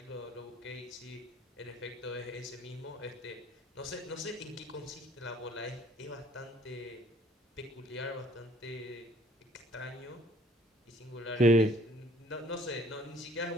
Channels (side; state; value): both; normal; correlation 0.58